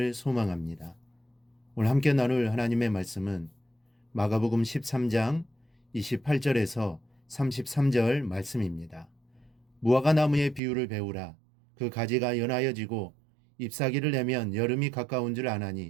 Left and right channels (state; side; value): drops out; left; at 10.6 s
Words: 소망합니다. 오늘 함께 나눌 하나님의 말씀은 마가복음 13장 28절에서 33절 말씀입니다. 무화과 나무의 비유를 배우라. 그 가지가 연하여지고 잎사귀를 내면 여름이 가까운 줄